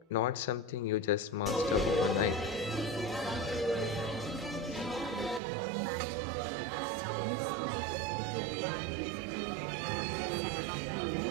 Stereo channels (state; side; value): drops out; left; at 5.4 s